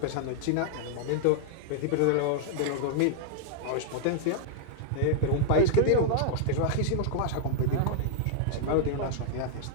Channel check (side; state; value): both; different; correlation -0.01